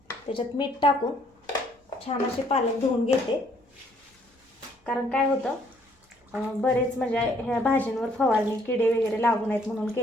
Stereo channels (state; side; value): normal; both; correlation 0.65